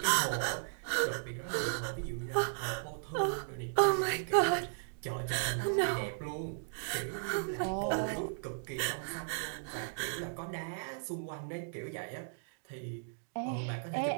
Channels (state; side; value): silent; left; digital silence